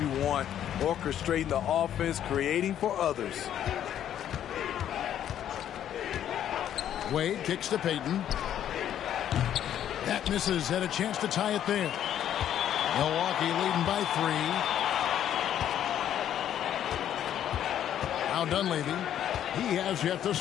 want. Orchestrating the offense, creating for others. Wade kicks to Payton. That misses. Had a chance to tie it there. Milwaukee leading by 3. Now Dunleavy. He has yet to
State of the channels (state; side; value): quieter; right; 10.5 dB